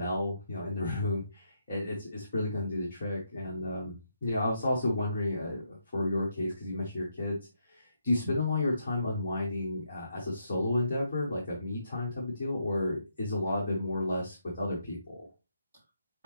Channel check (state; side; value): inverted; both; correlation -0.78